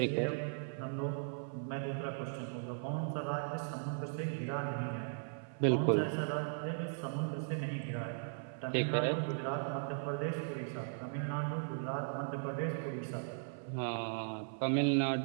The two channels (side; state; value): left; silent; 53 dB below the other